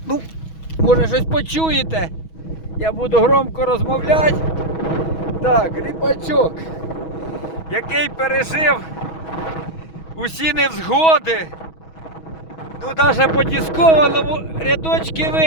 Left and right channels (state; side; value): late; right; 6.2 ms